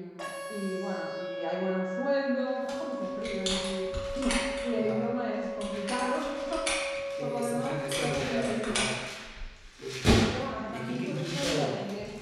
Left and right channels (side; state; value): both; identical; correlation 1.00